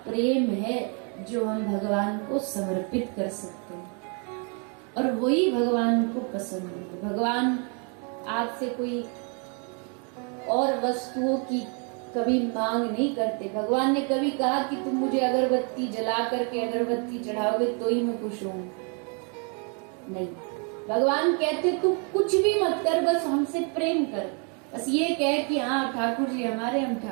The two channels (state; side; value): quieter; left; 37.7 dB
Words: प्रेम है जो हम भगवान को समर्पित कर सकते हैं, और वही भगवान को पसंद है। भगवान आपसे कोई और वस्तुओं की कभी मांग नहीं करते। भगवान ने कभी कहा कि तुम मुझे अगरबत्ती जला करके अगरबत्ती चढ़ाओगे तो ही मैं खुश हूं? नहीं। भगवान कहते तू कुछ भी मत कर, बस हमसे प्रेम कर, बस ये कह कि हाँ ठाकुर जी हमारे, हम